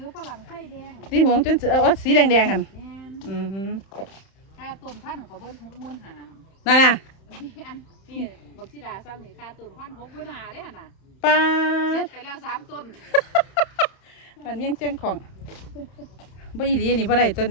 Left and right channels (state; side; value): late; right; 31 ms